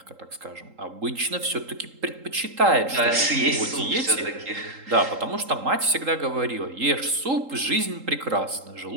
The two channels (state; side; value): late; left; 3.8 ms